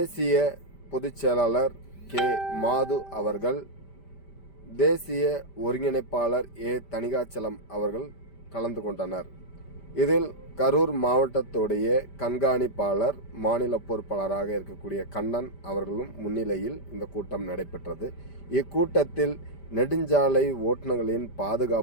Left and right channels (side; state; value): right; late; 5.1 ms